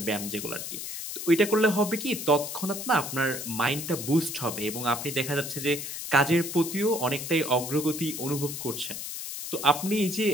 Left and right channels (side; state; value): left; noise; hiss, 7 dB below the sound